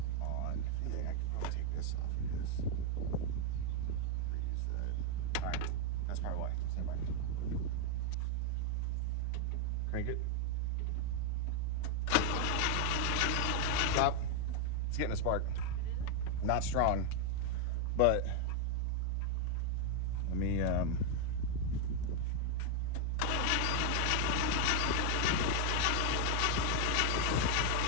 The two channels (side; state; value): both; different; correlation 0.00